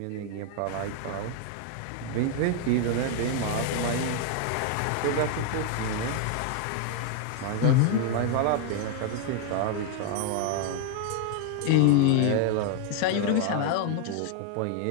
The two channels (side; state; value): both; different; correlation 0.00